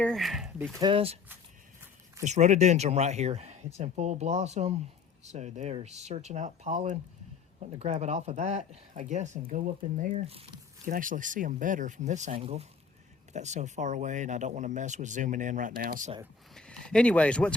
Because this rhododendron right here, it's in full blossom, so they're searching out pollen, wanting to grab it off of that, I guess, and go up in there. You can actually see them better from this angle, but that's so far away and I don't want to mess with zooming in right now. So anyways, what's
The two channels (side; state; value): right; quieter; 5.4 dB